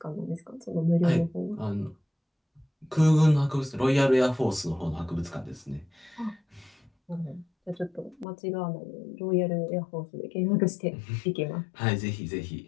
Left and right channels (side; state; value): right; drops out; at 8.2 s